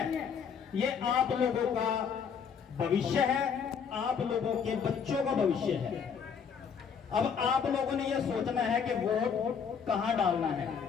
ये आप लोगों का भविष्य है, आप लोगों के बच्चों का भविष्य है। अब आप लोगों ने ये सोचना है कि वोट कहाँ डालना है।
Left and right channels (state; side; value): quieter; right; 6.7 dB